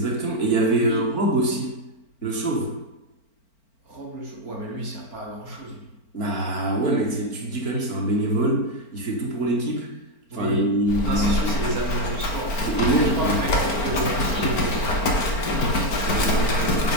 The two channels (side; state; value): right; late; 4.4 ms